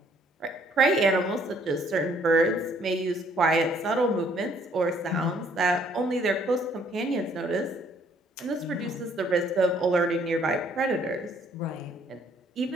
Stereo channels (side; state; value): both; normal; correlation 0.64